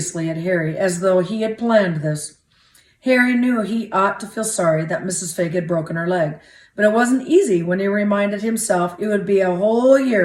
at Harry as though he had planned this. Harry knew he ought to feel sorry that Mrs. Figg had broken her leg, but it wasn't easy when he reminded himself it would be a whole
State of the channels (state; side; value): identical; both; correlation 1.00